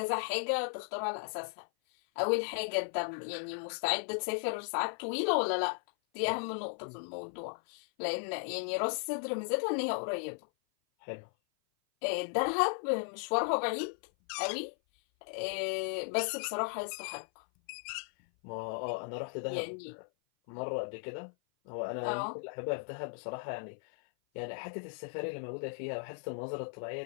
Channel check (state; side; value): silent; right; 54 dB below the other